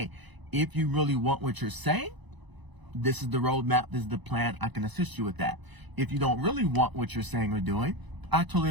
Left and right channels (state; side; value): late; left; 1.0 ms